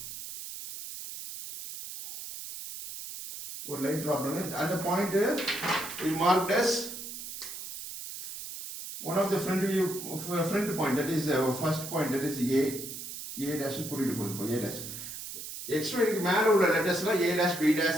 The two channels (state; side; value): noise; right; hiss, 9 dB below the sound